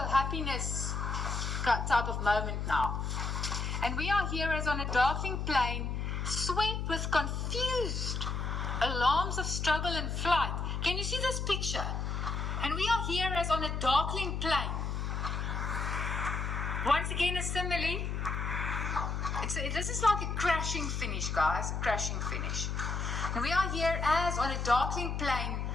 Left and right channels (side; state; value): left; noise; hum, 2 dB below the sound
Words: type of moment now. And we are here as on a darkening plane, swept with confused alarms of struggle and flight. Can you see this picture? And we are here as on a darkening plane. Once again, a simile. This is like a crashing finish, guys. A crashing finish. And we are here as on a darkening plane,